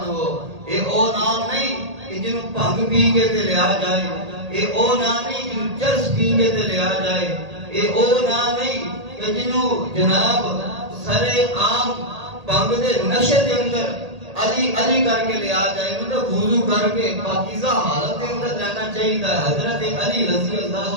اے او نام نہیں کہ جنہوں بھنگ پی کے تے لیا جائے، اے او نام نہیں جنہوں چرس پی کے تے لیا جائے، اے او نام نہیں کہ جنہوں جناب سرے عام بھنگ دے نشے دے اندر علی علی کر کے لیا جائے، مطلب وضو کر کے پاکیزہ حالت کے اندر رہنا چاہیے تھا۔ حضرت علی رضی اللہ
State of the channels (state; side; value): late; left; 1.8 ms